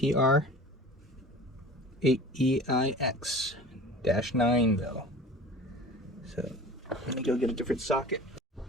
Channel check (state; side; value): normal; both; correlation 0.40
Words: though. So let me go get a different socket.